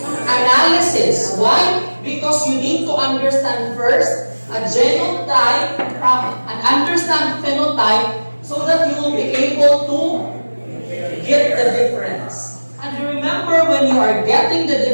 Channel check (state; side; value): inverted; both; correlation -1.00